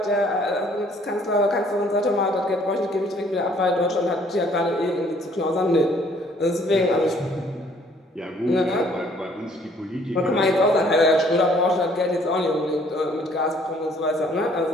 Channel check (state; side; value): normal; both; correlation 0.61